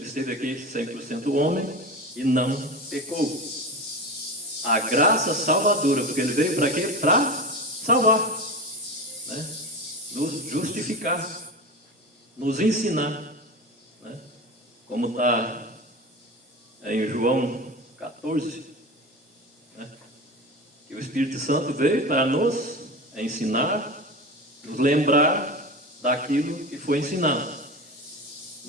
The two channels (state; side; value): normal; both; correlation 0.26